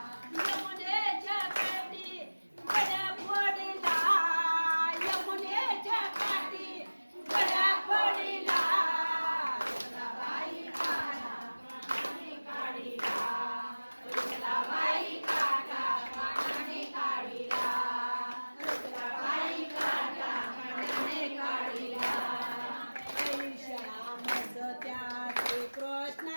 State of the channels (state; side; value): inverted; both; correlation -1.00